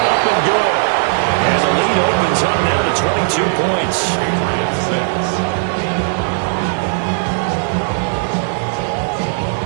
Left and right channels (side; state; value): left; silent; 64 dB below the other